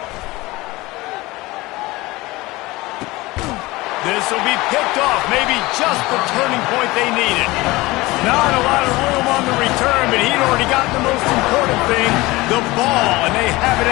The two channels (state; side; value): quieter; right; 20.8 dB